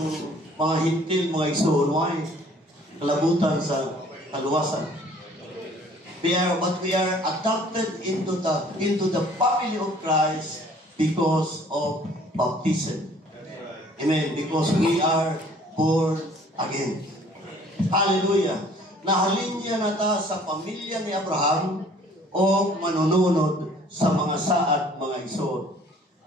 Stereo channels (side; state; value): both; normal; correlation 0.55